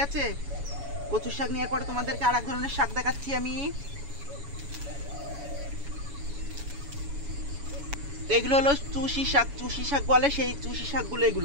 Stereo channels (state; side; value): late; left; 7.1 ms